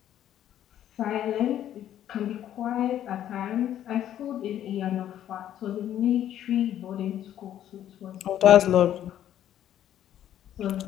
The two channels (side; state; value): right; quieter; 11.2 dB